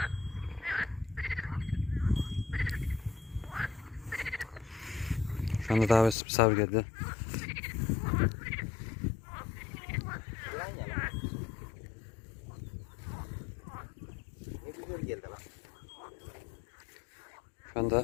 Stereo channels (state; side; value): drops out; right; at 6.2 s